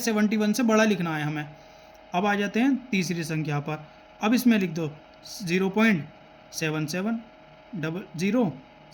से बड़ा लिखना है हमें। अब आ जाते हैं तीसरी संख्या पर। अब इसमें लिख दो 0.77 00,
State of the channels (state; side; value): identical; both; correlation 1.00